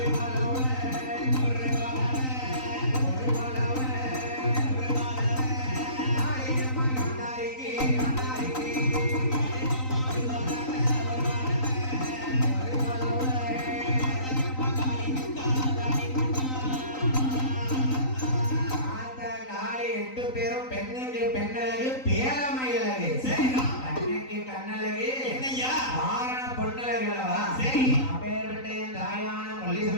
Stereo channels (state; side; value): late; right; 3.9 ms